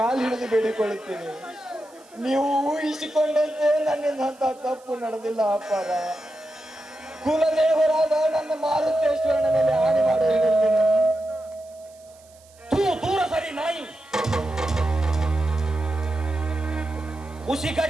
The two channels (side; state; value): right; noise; hiss, 28 dB below the sound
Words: ಹಿಡಿದು ಬೇಡಿಕೊಳ್ಳುತ್ತೇನೆ, ನೀವು ಊಹಿಸಿಕೊಂಡಂತೆ ನನ್ನಿಂದ ಅಂತ ತಪ್ಪು ನಡೆದಿಲ್ಲ ಅಪ್ಪಾರ. ಕುಲದೇವರಾದ ನನ್ನ ಮಾರುತೇಶ್ವರನ ಮೇಲೆ ಆಣೆ ಮಾಡಿ ಹೇಳುತ್ತೇನೆ. ದೂರ ಸರಿ ನಾಯಿ.